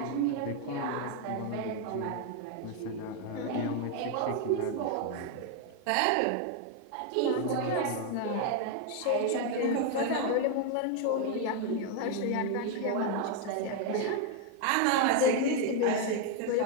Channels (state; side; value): different; both; correlation 0.01